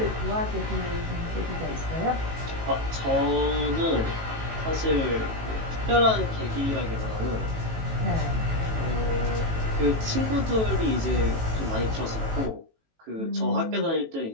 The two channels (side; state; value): left; late; 18 ms